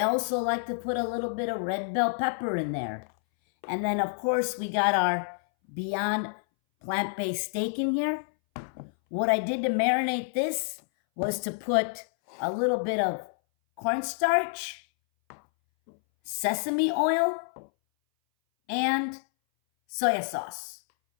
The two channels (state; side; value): silent; right; 59 dB below the other